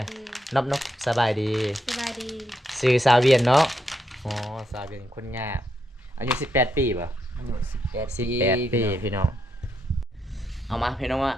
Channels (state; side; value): normal; both; correlation 0.80